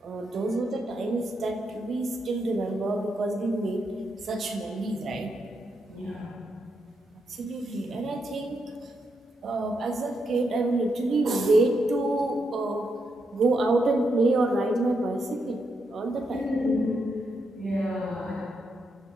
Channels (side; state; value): both; normal; correlation 0.81